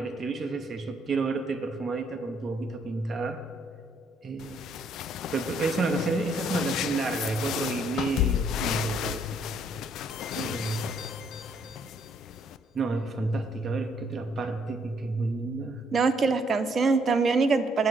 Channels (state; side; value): normal; both; correlation 0.69